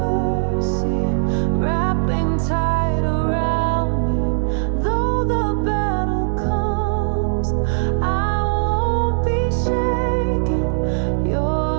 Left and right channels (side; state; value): left; silent; 64 dB below the other